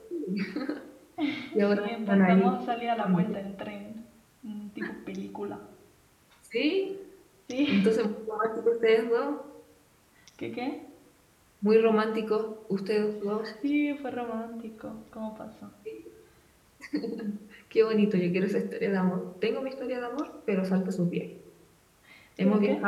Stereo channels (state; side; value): identical; both; correlation 1.00